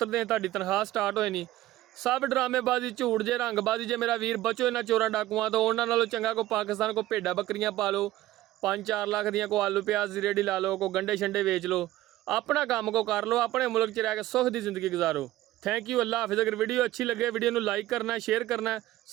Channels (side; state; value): left; quieter; 15.5 dB